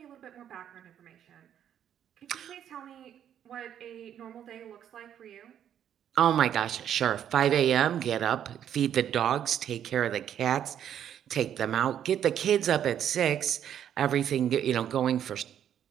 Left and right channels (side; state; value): left; quieter; 9.8 dB